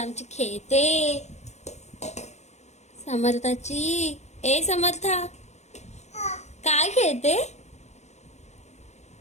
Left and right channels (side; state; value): right; late; 0.33 ms